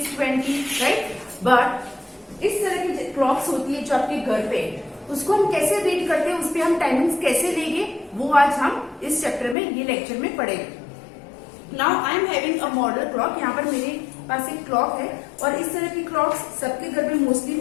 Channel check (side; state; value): right; drops out; at 9.6 s